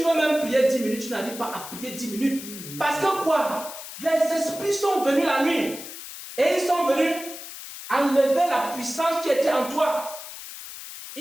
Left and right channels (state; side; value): noise; left; hiss, 12 dB below the sound